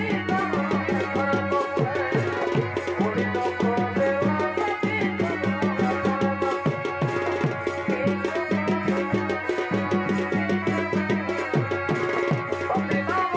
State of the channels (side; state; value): both; identical; correlation 1.00